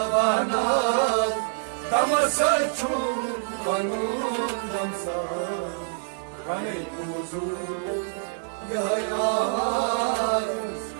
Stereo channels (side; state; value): left; silent; digital silence